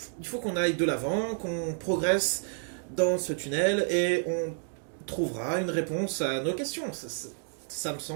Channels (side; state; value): left; silent; 58 dB below the other